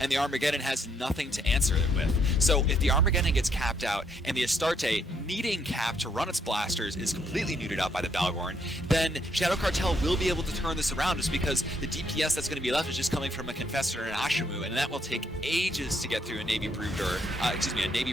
the Armageddon has nothing to answer it with. So if the Armageddon gets capped out, and the Astarte, needing cap to run its blasters, is completely neutered out by the Balgorn, then Shadow Cartel will be able to turn this around just because the DPS that's going to be left is just coming from a Confessor and an Ashimu, and that will take ages to get through a Navy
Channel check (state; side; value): normal; both; correlation 0.72